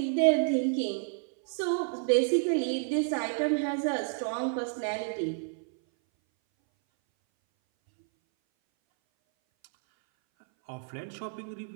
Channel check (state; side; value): silent; left; 58 dB below the other